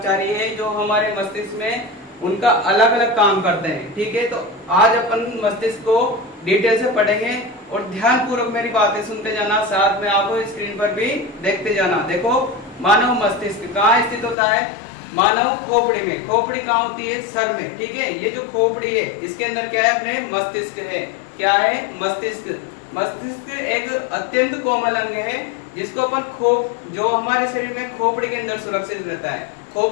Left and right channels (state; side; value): drops out; right; at 14.4 s